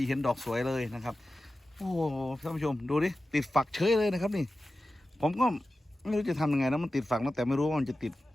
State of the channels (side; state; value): both; normal; correlation 0.94